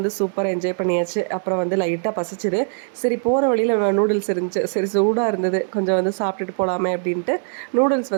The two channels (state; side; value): silent; left; 62 dB below the other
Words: சூப்பராக என்ஜாய் பண்ணியாச்சு. அப்புறம் வந்து லைட்டாக பசிச்சுது. சரி போகிற வழியில் நூடுல்ஸ் இருந்துச்சு. சரி சூடாக இருந்தது, கொஞ்சம் வந்து சாப்பிட்டுட்டு போகலாமே அப்படின்ட்டு நூடுல்ஸ்